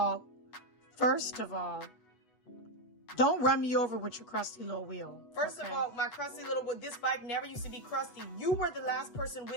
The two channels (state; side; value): late; right; 8.1 ms